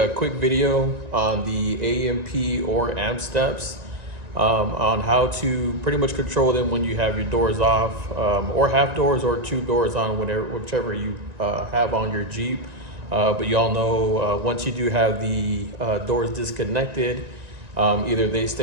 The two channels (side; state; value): left; late; 1.9 ms